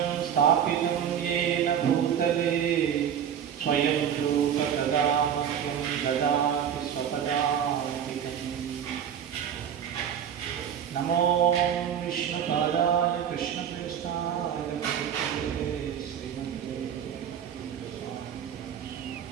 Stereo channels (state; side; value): quieter; left; 8.8 dB